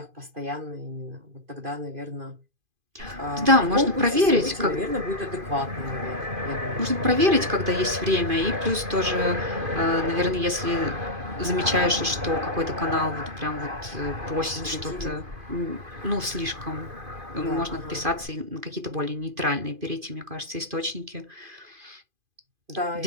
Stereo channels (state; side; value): late; left; 2.5 ms